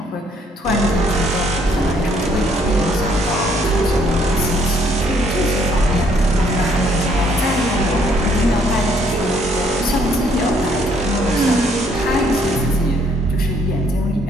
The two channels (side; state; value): both; normal; correlation 0.66